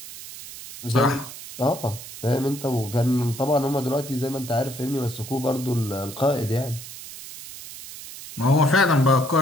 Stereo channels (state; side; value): noise; right; hiss, 13 dB below the sound